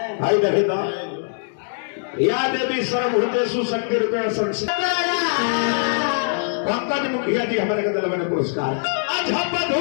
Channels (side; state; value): right; silent; digital silence